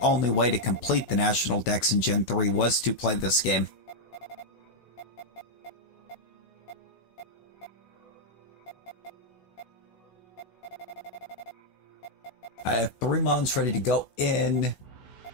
way to complete the National Dex in Gen 3 was to play this game. I have 3 mons ready to go in.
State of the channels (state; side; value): late; right; 16 ms